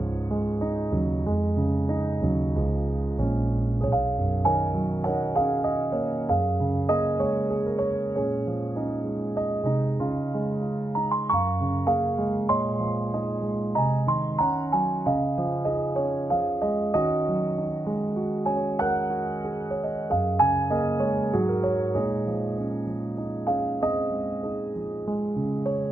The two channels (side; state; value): right; late; 0.15 ms